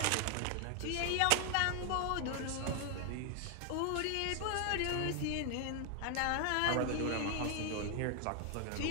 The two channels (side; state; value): both; different; correlation 0.00